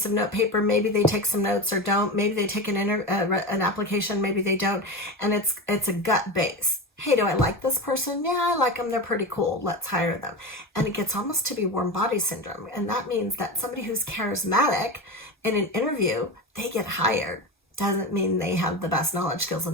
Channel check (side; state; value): both; normal; correlation 0.23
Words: of note paper. Maybe they take some notes or don't. Maybe they take an application. Maybe they don't. And it's a gut base. Hey, do I like this person? Yeah, I like them. They're pretty cool. Let's hire them. And it gets almost to be warm body syndrome. And that means that somebody who's charismatic in an interview, they get hired. Doesn't mean they have the best knowledge, skills, and